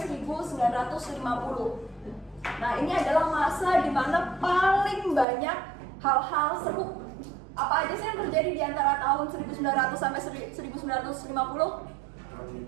Nah, ini adalah masa di mana paling banyak hal-hal seru. Apa aja sih yang terjadi di antara tahun 1900 sampai 1950?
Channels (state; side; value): drops out; left; at 5.2 s